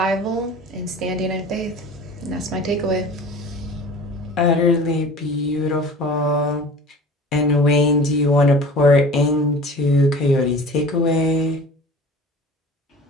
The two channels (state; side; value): normal; both; correlation 0.41